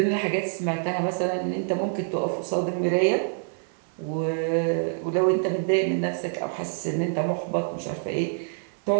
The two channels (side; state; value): left; silent; 61 dB below the other